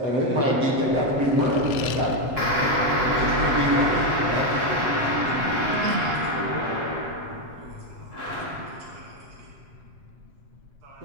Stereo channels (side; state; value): left; late; 7.8 ms